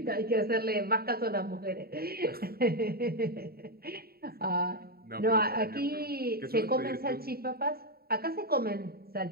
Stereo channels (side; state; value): left; late; 0.45 ms